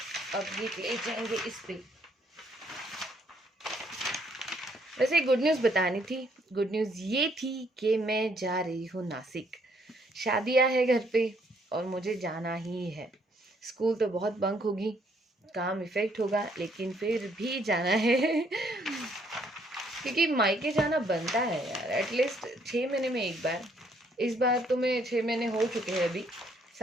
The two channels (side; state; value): both; normal; correlation 0.68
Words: अब ये ले जाएंगे इस पे। वैसे एक गुड न्यूज़ बतानी थी। गुड न्यूज़ ये थी कि मैं जा रही हूँ नासिक। शादियाँ है घर पे और मुझे जाना ही है। स्कूल तो बहुत बंक होगी, काम इफेक्ट होगा, लेकिन फिर भी जाना है क्योंकि मायके जाना बनता है यार, एटलीस्ट 6 महीने में एक बार। इस बार तो मैं 6 महीने हो चुके हैं, अभी